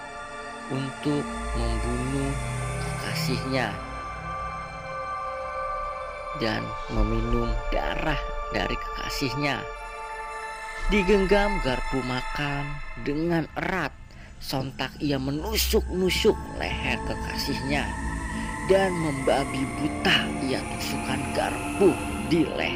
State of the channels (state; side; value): identical; both; correlation 1.00